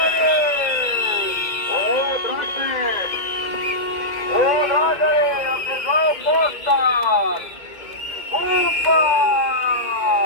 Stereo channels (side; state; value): right; late; 2.1 ms